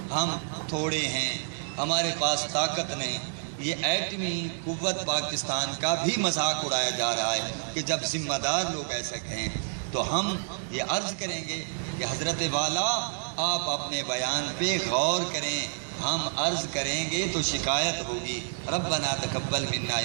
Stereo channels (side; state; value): left; silent; digital silence